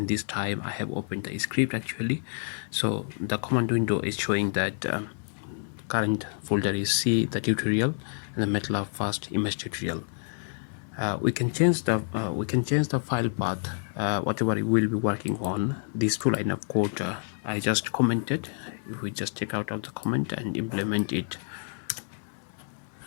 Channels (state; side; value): silent; right; 59 dB below the other